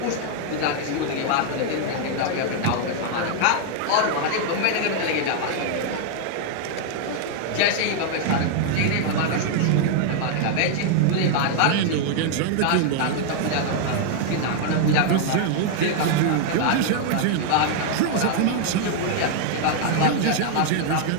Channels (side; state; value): both; different; correlation 0.00